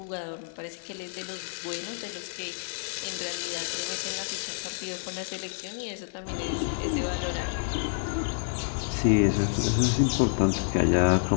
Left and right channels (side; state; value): right; silent; digital silence